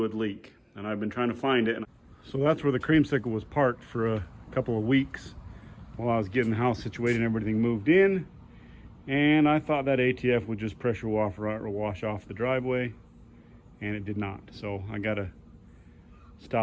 leak, and I've been trying to find it. So that's where the Creamsicle was parked for a couple of weeks while I was getting the house situated and everything moved in. And I thought that ATF would just pressure wash off the driveway, and it did not. So I gotta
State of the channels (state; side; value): identical; both; correlation 1.00